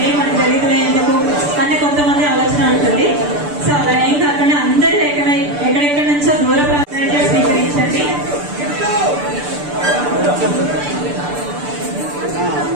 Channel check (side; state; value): left; late; 6.8 ms